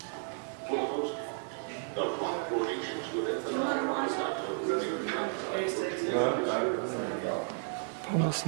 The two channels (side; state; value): left; silent; 56 dB below the other